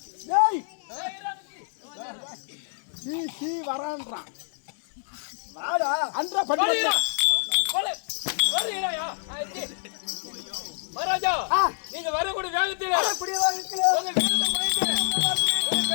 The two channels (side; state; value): right; silent; 58 dB below the other